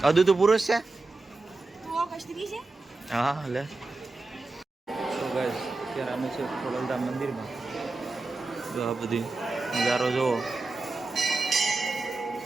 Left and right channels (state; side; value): quieter; left; 3.4 dB